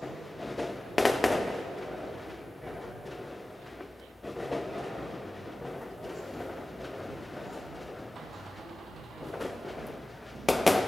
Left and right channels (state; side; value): normal; both; correlation 0.96